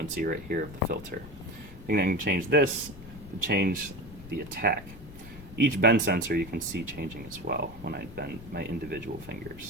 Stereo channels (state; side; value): noise; left; rumble, 16 dB below the sound